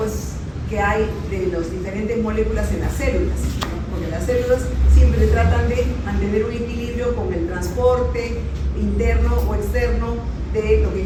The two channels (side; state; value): both; identical; correlation 1.00